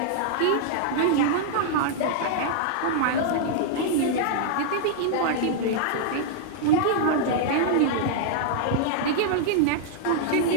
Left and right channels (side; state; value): both; different; correlation -0.01